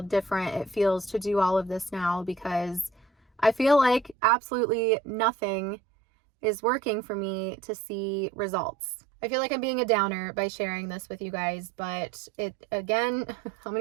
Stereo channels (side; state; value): left; drops out; at 4.2 s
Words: different it feels to do all of this now because I feel like absolutely nothing is working for me to see results. I feel like I'm being a downer by sharing this with you guys, but it, again, how